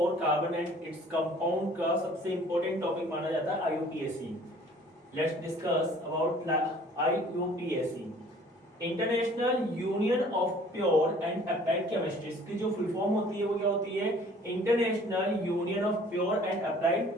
carbon and its compound का सबसे इंपॉर्टेंट टॉपिक माना जाता है आईयूपीएससी। Let's discuss about आईयूपीएससी, international union of pure and applied chemistry. इसकी जो फुल फॉर्म होती है वो क्या होती है? International union of pure and applied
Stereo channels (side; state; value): both; normal; correlation 0.53